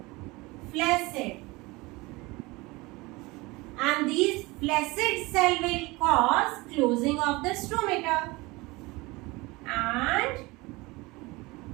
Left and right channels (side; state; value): left; quieter; 22.9 dB